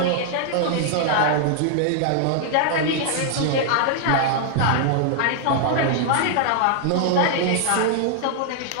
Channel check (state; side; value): different; both; correlation 0.00